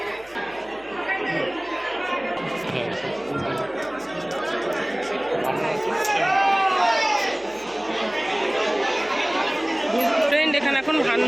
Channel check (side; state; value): right; noise; hum, 26 dB below the sound